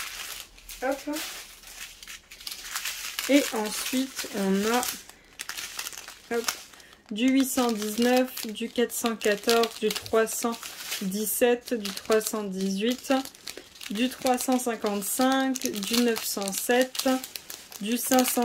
Hop. Et ensuite, on a du 819, du 414, du 317, du 318, du 355, du 907, du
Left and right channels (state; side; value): identical; both; correlation 1.00